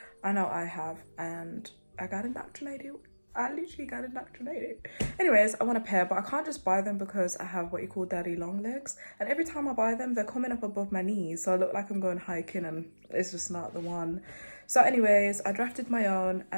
I know I have, and I got indoctrinated. I literally got indoctrinated. Anyways, I want a pair, but I can't just buy them because I have what you call daddy long legs. And every time I buy them, they're coming up above my knees, so I look like I'm going hiking and it's just not the one. So anyways, I drafted my own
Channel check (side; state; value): both; inverted; correlation -1.00